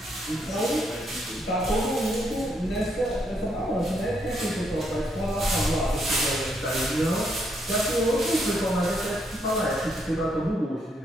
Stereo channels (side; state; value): both; normal; correlation 0.75